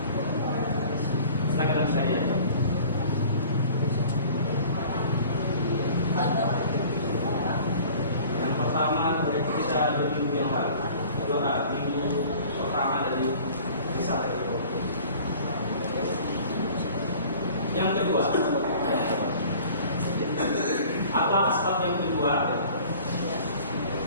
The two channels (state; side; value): inverted; both; correlation -0.47